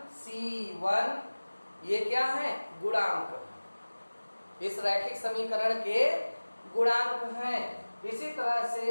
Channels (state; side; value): inverted; both; correlation -1.00